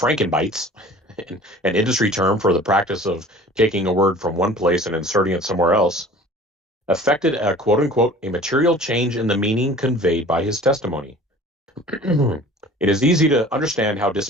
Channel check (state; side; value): normal; both; correlation 0.45